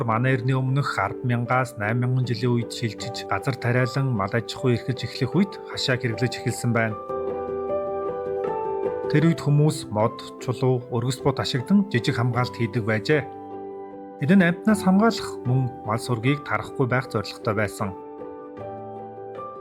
манай эртний өмнөх 10,000-аас 8,000 жилийн үед шилжиж, газар тариалан мал аж ахуй эрхэлж эхлэх үед хашааг хэрэглэж эхэлсэн байна. Тэр үед хүмүүс мод, чулуу, өргөс бот ашигладан жижиг хамгаалалт хийдэг байжээ. Энэ нь амьтнаас хамгаалах мөн мал сүргийг тарахгүй байх зорилготой байсан.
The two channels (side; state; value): both; identical; correlation 1.00